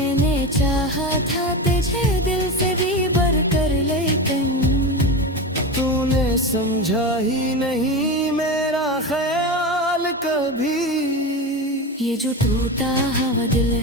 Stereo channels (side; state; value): both; normal; correlation 0.22